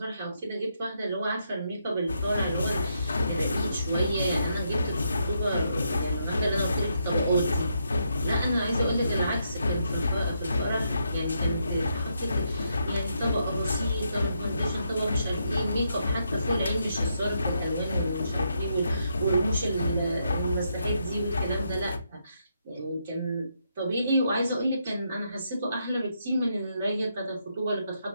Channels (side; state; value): both; inverted; correlation -0.79